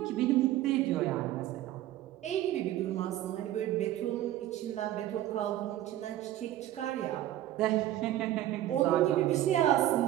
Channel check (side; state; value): left; quieter; 13.6 dB